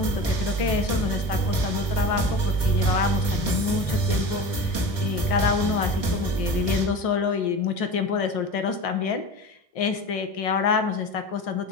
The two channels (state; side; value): late; right; 1.6 ms